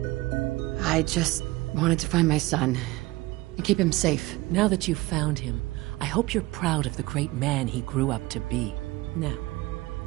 I just wanted to find my son and keep him safe. Now that you've found him, I hope you're proud of the great man he grew up to be. Now,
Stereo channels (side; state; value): left; quieter; 20.0 dB